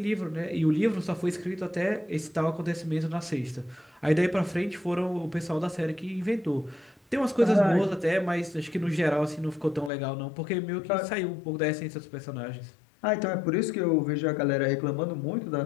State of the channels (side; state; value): right; drops out; at 9.9 s